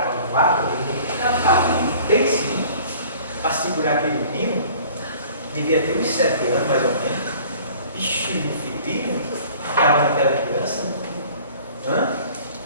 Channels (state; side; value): inverted; both; correlation -0.49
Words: vaga, tem sim, para segurar aquele menino, devia ter uns 7 anos mais ou menos, bicho filhinho, ficava naquela criança,